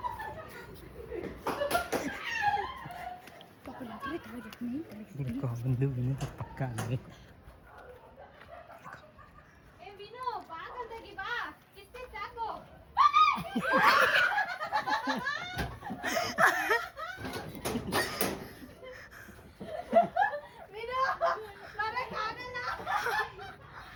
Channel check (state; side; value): identical; both; correlation 1.00